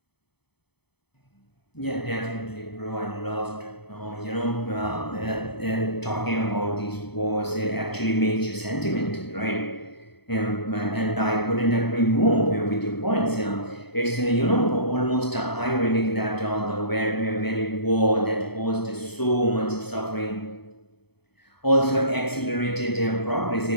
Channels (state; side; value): late; right; 0.98 ms